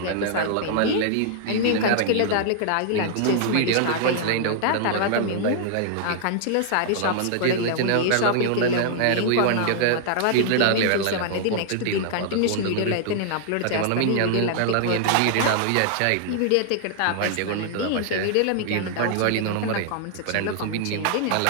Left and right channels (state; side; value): different; both; correlation -0.01